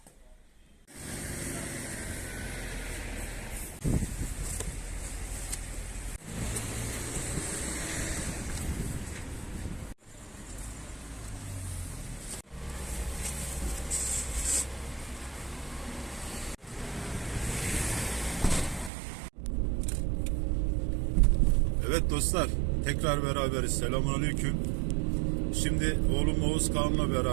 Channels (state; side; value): drops out; left; at 18.9 s